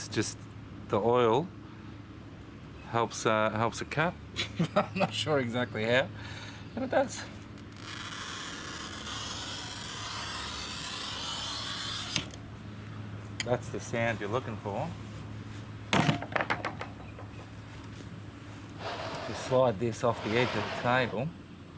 just, the oil helps it cut. I'm not sure exactly how, but it does. That's the sound you're looking for. Just slide this off the edge of the table.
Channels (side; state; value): both; identical; correlation 1.00